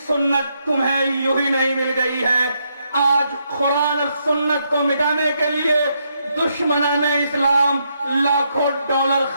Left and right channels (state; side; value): inverted; both; correlation -0.78